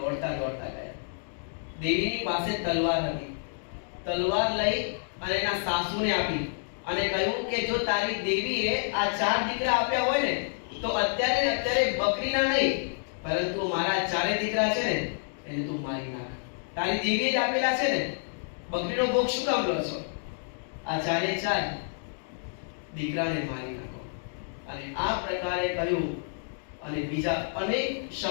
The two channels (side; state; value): right; silent; digital silence